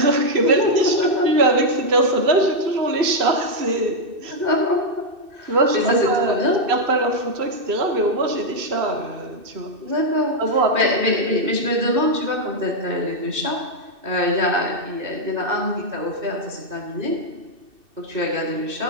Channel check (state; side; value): late; left; 2.6 ms